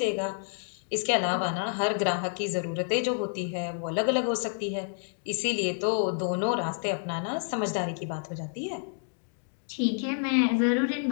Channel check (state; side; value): silent; right; digital silence